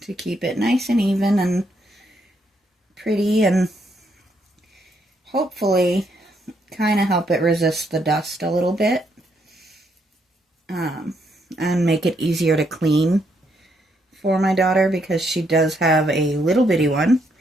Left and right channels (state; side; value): normal; both; correlation 0.75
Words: to keep it nice and even and pretty and hopefully kind of help it resist the dust a little bit, and make it easier to clean for my daughter, because she does have a little bitty one,